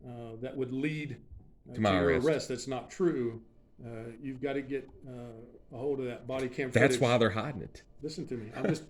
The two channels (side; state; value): both; identical; correlation 1.00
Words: that would lead to my your arrest. arrest that's not true, you've got to get a hold of that body cam footage. That's why they're hiding it. Listen to me.